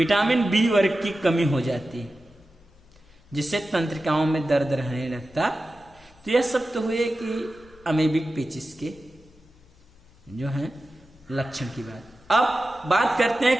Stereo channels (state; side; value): noise; left; hum, 29 dB below the sound